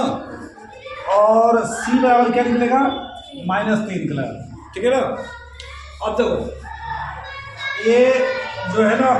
और सी बराबर क्या निकलेगा, -3 निकलेगा, ठीक है ना। अब देखो ये जो है ना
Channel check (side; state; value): both; identical; correlation 1.00